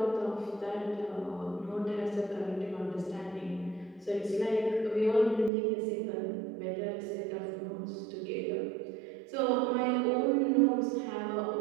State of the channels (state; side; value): drops out; left; at 5.5 s